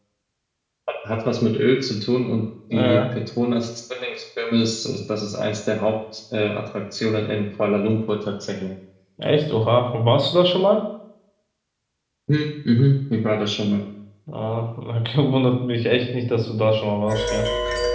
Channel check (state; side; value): identical; both; correlation 1.00